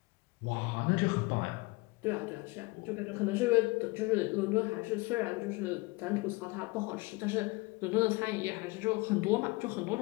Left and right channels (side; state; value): right; quieter; 24.6 dB